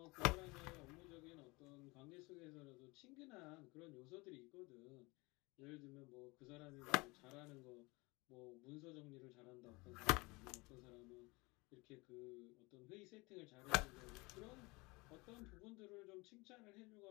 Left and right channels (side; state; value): right; quieter; 24.9 dB